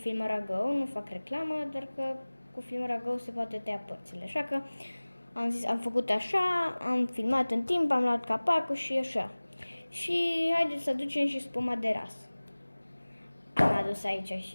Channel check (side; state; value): both; inverted; correlation -1.00